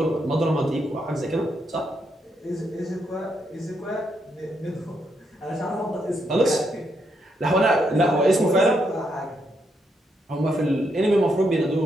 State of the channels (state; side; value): normal; both; correlation 0.79